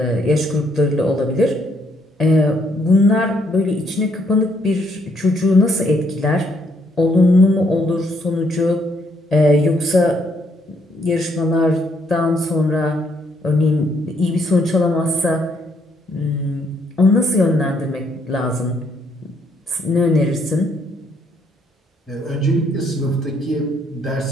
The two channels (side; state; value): both; normal; correlation 0.71